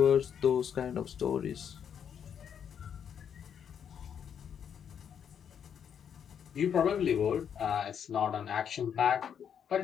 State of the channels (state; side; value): quieter; right; 8.1 dB